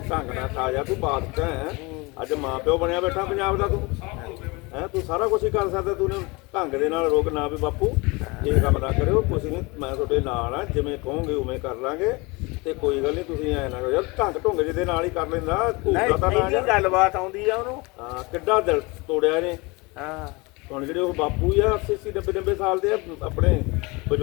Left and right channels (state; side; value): quieter; right; 25.9 dB